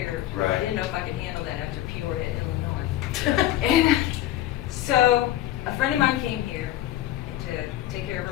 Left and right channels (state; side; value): quieter; right; 13.6 dB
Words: Right. I didn't know if I could handle that after Peoria, Illinois. And so a friend of mine came here to take care of